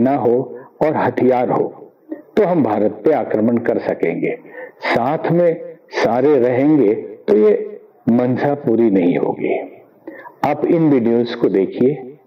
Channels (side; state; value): both; identical; correlation 1.00